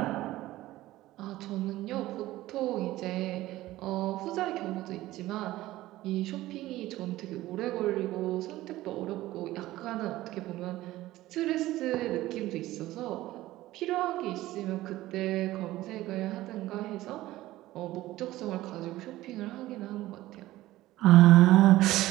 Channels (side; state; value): left; quieter; 16.4 dB